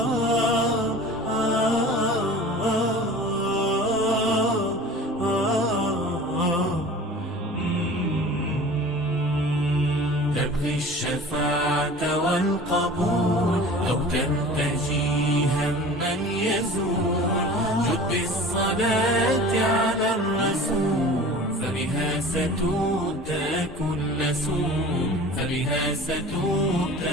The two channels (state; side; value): normal; both; correlation 0.41